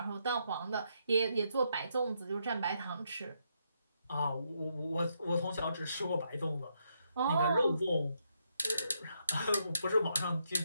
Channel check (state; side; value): inverted; both; correlation -0.78